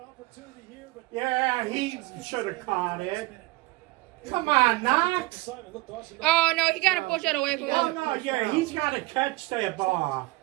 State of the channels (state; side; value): quieter; left; 21.1 dB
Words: opportunity here, but Yeah, he should have caught it. Come on, Knox. Oh, no, he gotta push that away from Oh, him. no, yeah, he's got to catch that ball.